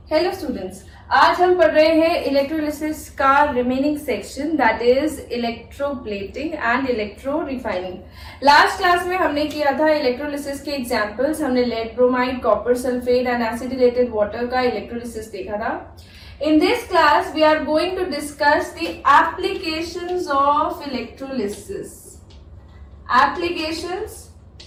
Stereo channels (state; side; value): identical; both; correlation 1.00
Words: हेलो स्टूडेंट्स, आज हम पढ़ रहे हैं इलेक्ट्रोलिसिस का remaining section that is electroplating and electro refining. Last class में हमने किया था इलेक्ट्रोलिसिस के एग्जांपल्स। हमने lead bromide, copper sulphate and acidulated water का इलेक्ट्रोलिसिस देखा था। In this class, we are going to discuss the applications of electrolysis. Applications